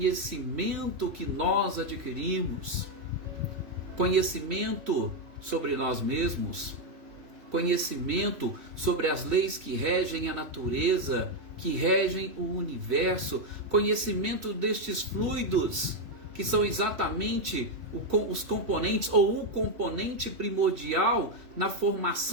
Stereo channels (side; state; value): left; late; 3.1 ms